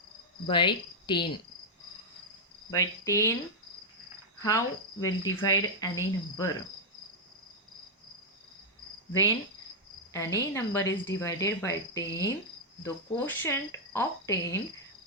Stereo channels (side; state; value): both; normal; correlation -0.04